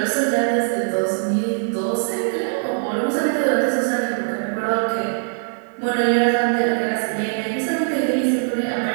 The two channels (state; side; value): silent; left; digital silence